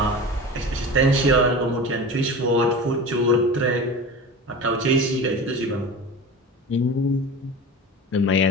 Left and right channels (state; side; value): normal; both; correlation 0.32